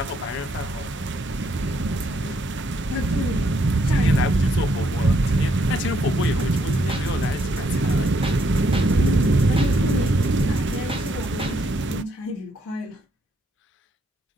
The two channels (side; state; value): both; normal; correlation 0.73